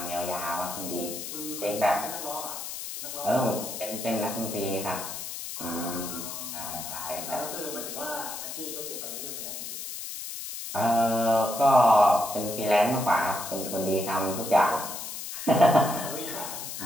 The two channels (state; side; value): noise; left; hiss, 7 dB below the sound